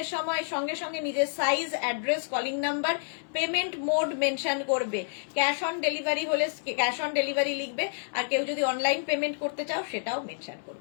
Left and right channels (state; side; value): silent; right; 59 dB below the other